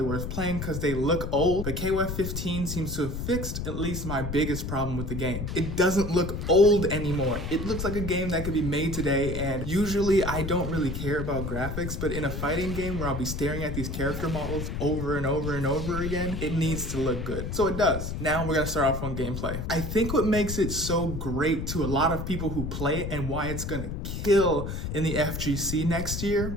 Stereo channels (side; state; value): left; noise; rumble, 4 dB below the sound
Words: worth playing because they look old, but KOF 15 seems to have fixed at least my biggest problem with the game. It doesn't look old anymore. It looks like a game that could be made today, and usually I don't really care about graphics, but in a fighting game where I'll be staring at these character models over and over and over again, it needs to look good. So it does. Now we're gonna start off on gameplay. I think what makes it so great to a lot of people who play it and why it's gonna kill in the FGC next